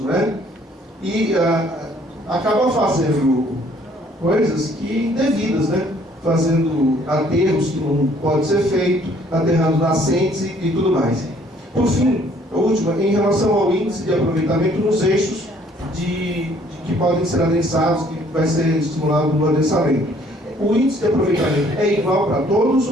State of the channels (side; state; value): both; normal; correlation 0.61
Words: né? E acaba fazendo coisas que indevidas, né? Fazendo aterros que não pode ser feito, aterrando nascentes e tudo mais. Por fim, a última, em relação ao índice de aproveitamento nos eixos que podem ser adensados, que vai ser estimulado no adensamento. O índice de aproveitamento é igual para todos